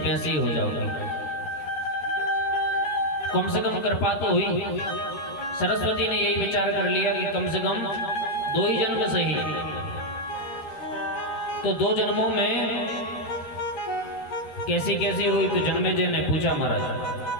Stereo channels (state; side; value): late; right; 13 ms